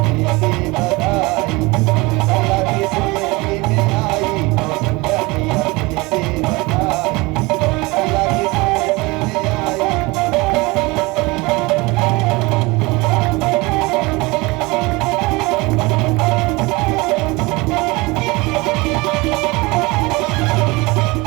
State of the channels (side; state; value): left; quieter; 23.8 dB